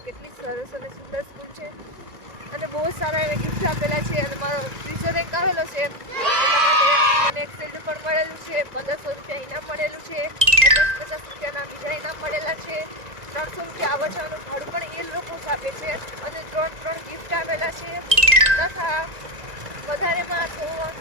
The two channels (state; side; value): late; left; 1.9 ms